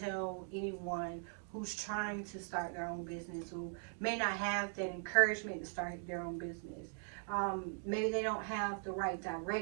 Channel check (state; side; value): silent; left; 51 dB below the other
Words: tell anyone who's trying to start their own business, who may not have that encouragement to start their own business? Maybe they don't have the right